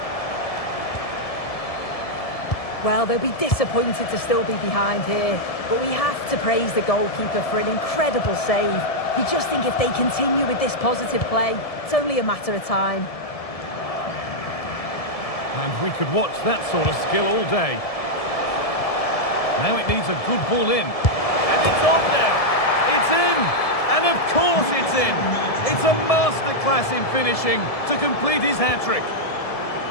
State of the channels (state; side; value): late; right; 1.7 ms